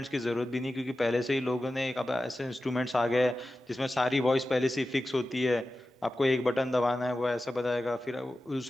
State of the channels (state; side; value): normal; both; correlation 0.94